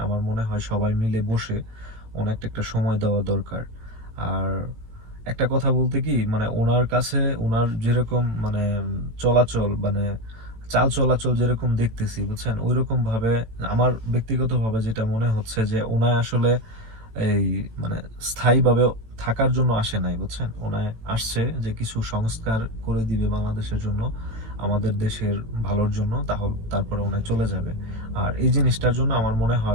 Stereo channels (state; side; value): late; left; 18 ms